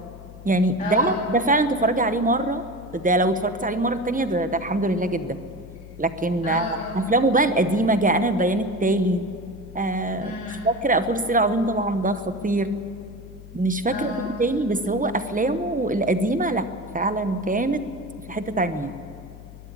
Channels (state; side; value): noise; left; hum, 17 dB below the sound